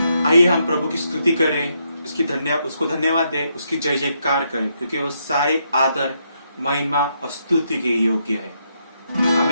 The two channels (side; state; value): both; inverted; correlation -0.78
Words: आइए हम प्रभु की स्तुति करें, उसको धन्यवाद दें, उसकी जय जयकार करें, क्योंकि वो सारे आदर, महिमा और स्तुति के योग्य है।